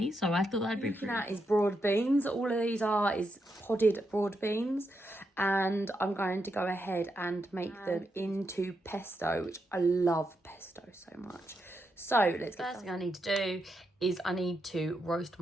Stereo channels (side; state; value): both; normal; correlation 0.83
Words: So I thought that'd be looking at is broad beans. All of these is podded broad beans, and I'm going to go ahead and make them into pesto, which I love pesto so much. So let's get First thing I need to do is I need to roast